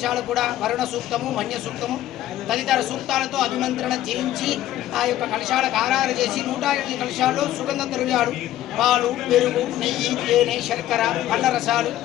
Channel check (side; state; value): right; quieter; 13.4 dB